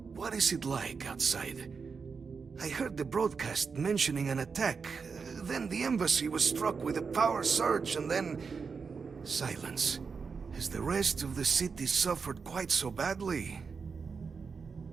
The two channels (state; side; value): quieter; left; 5.3 dB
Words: what is it like outside? I heard the broadcast mentioning an attack. Then the embassy was struck with a power surge and then... silence. Has the rest of the city suffered quite so badly?